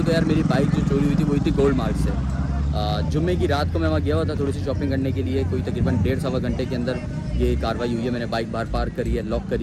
तो यार, मेरी बाइक जो चोरी हुई थी वो थी गोल्ड मार्क से। जुम्मे की रात को मैं वहाँ गया हुआ था थोड़ी सी शॉपिंग करने के लिए, कोई तकरीबन 1.5-1.25 घंटे के अंदर ये कार्रवाई हुई है। मैंने बाइक बाहर पार्क करी है, लॉक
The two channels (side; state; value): both; identical; correlation 1.00